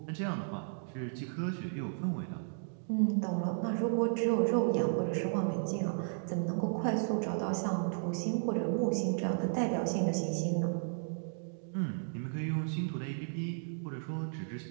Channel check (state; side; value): silent; left; digital silence